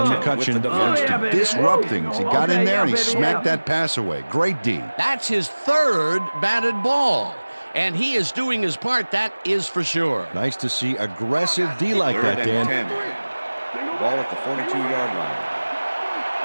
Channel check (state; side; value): inverted; both; correlation -1.00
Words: McCutcheon wants to disrupt things. He got in there and he smacked that pass away. Great D. That's his third batted ball, and he is doing his part, that is for sure. Nice to see aggressive D like Third that, and Dan. 10. Ball at the 42-yard line.